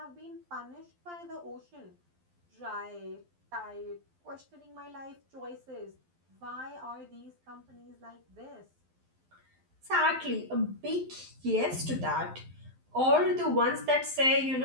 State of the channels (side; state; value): left; late; 12 ms